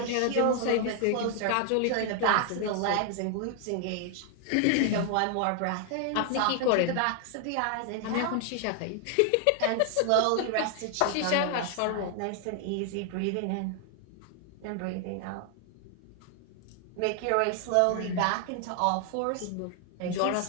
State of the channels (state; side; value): different; both; correlation 0.00